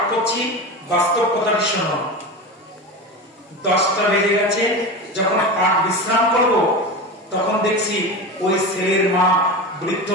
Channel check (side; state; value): both; normal; correlation 0.25